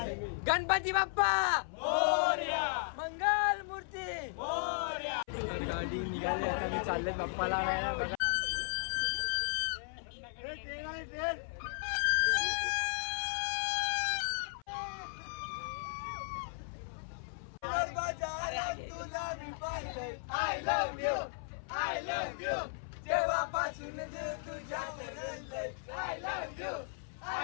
गणपती बाप्पा मोरया, मंगल मूर्ती. मोरया. तर गाडी निघाली, आता मी चालले बाप्पाला आणायला. बघा तुला मी पाहिलंय. I love you, I love you. जेव्हापासून तुझ्यात रंगलंय. I love you,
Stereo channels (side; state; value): right; silent; 54 dB below the other